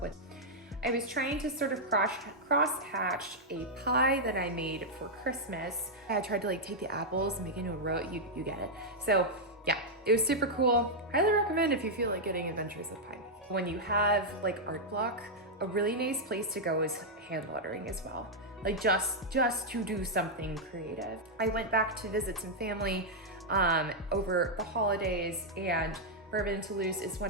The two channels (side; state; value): both; normal; correlation -0.03